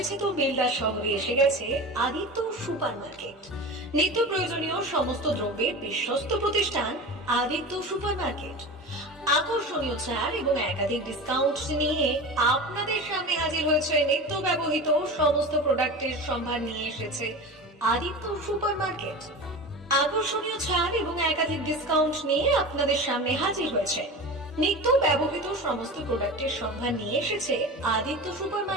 বেলদা শহরে এসে গেছে আদিত্য সুপার মার্কেট। নিত্য প্রয়োজনীয় সমস্ত দ্রব্যের বিশ্বস্ত প্রতিষ্ঠান আদিত্য সুপার মার্কেট। আকর্ষণীয় ছাড় এবং একাধিক ডিসকাউন্ট নিয়ে আপনাদের সামনে হাজির হয়েছে। নিত্য ব্যবহৃত সমস্ত প্রোডাক্টের সম্ভার নিয়ে এসেছে আদিত্য সুপার মার্কেট। আকর্ষণীয় ছাড় এবং একাধিক ডিসকাউন্ট নিয়ে আপনাদের সামনে হাজির হয়েছে। নিত্য ব্যবহৃত সমস্ত প্রোডাক্টের সম্ভার নিয়ে এসেছে আদিত্য সুপার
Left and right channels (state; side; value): normal; both; correlation 0.30